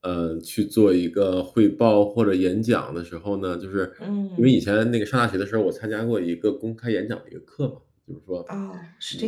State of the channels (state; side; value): identical; both; correlation 1.00